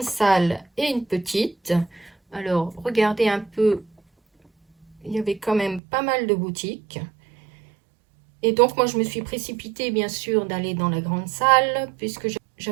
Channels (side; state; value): left; drops out; at 5.8 s